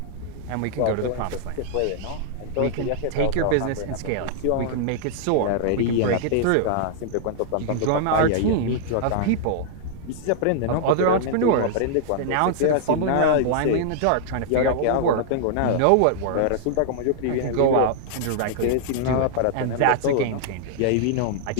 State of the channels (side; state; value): both; different; correlation -0.01